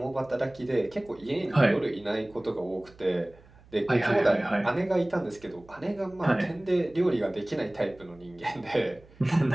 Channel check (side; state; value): right; noise; hum, 25 dB below the sound